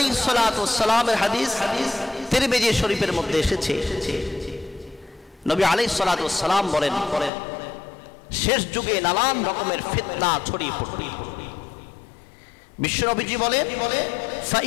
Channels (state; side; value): drops out; right; at 7.3 s